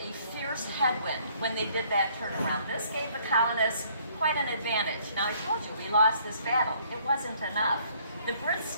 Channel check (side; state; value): both; inverted; correlation -0.62